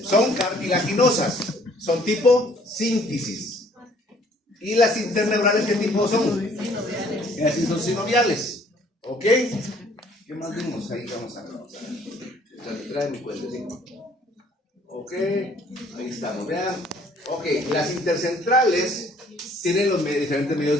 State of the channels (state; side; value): normal; both; correlation 0.59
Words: son cartilaginosas, son tipo sínfisis. ¿Y las interneurales qué tipo son? Y así son sinoviales. ¿Ok? ¿Qué más vimos? Ahí vamos a ver. Trae mi cuentecito. Ok, ahí estamos, vean. Ok, las intercentrales tienen los diferentes medios